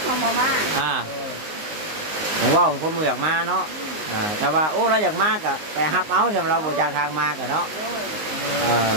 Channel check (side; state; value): left; late; 19 ms